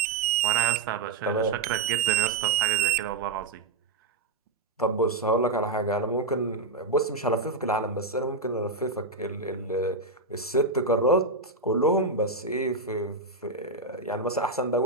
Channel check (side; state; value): left; quieter; 3.4 dB